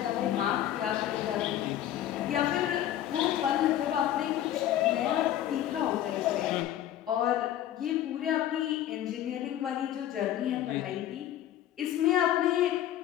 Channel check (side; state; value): right; quieter; 12.0 dB